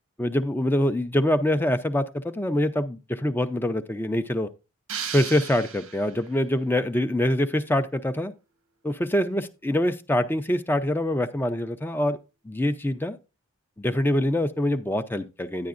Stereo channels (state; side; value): normal; both; correlation 0.83